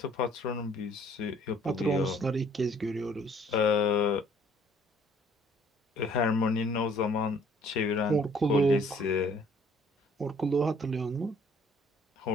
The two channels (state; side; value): normal; both; correlation 0.59